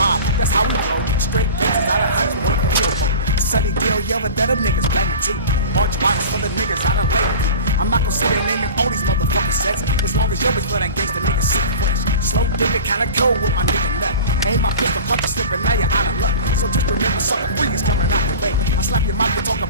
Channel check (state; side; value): inverted; both; correlation -0.35